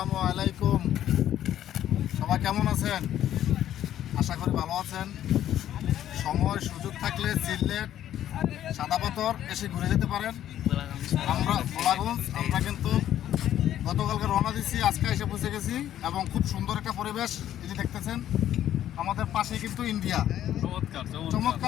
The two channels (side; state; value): right; quieter; 11.6 dB